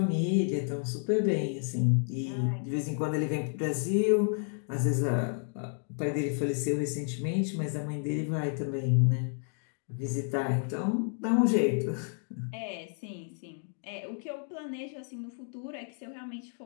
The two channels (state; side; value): silent; right; 57 dB below the other